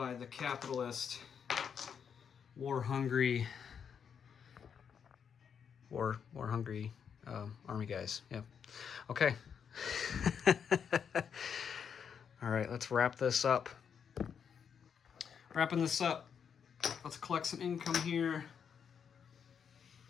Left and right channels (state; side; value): quieter; right; 7.3 dB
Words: the capitalist, war-hungry army guys. Yeah. Okay. All right, let's wrap this up. Wrapping this up, let's collect some income here.